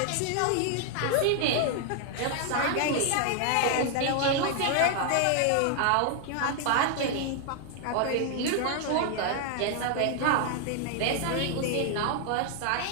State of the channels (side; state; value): both; different; correlation 0.00